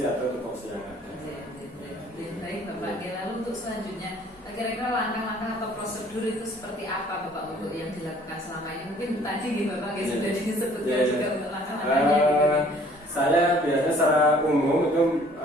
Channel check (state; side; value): normal; both; correlation 0.56